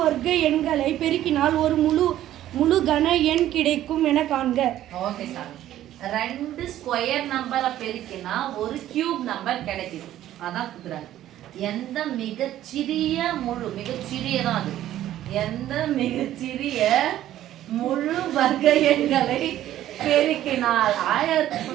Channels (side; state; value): left; quieter; 12.9 dB